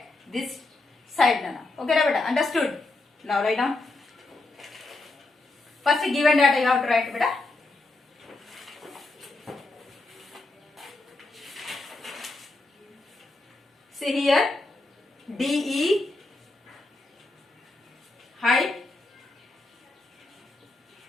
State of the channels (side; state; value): right; quieter; 3.1 dB